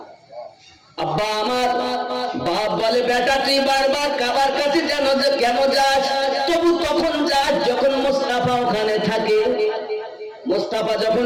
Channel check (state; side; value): identical; both; correlation 1.00